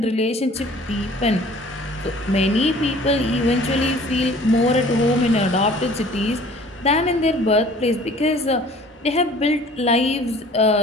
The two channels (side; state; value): both; normal; correlation 0.50